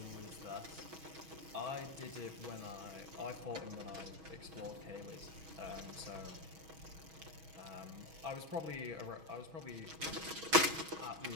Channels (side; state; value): left; late; 6.3 ms